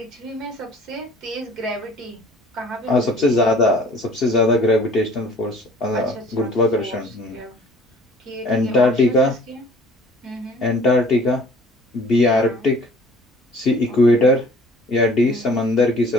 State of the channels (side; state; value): both; normal; correlation 0.51